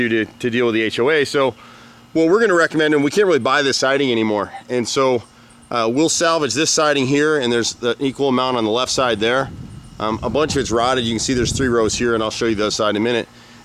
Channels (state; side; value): identical; both; correlation 1.00